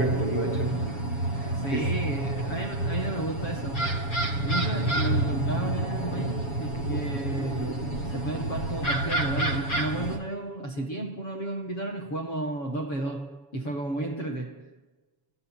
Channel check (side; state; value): right; late; 7.2 ms